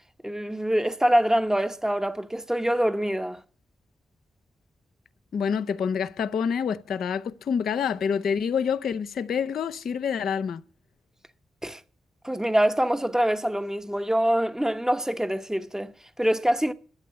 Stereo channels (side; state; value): both; normal; correlation 0.91